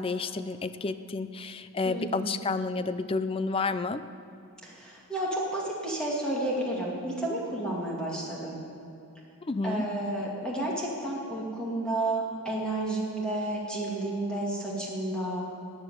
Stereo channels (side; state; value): both; normal; correlation 0.37